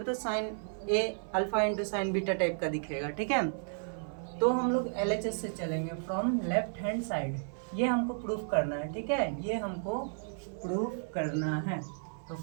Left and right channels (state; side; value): silent; left; 56 dB below the other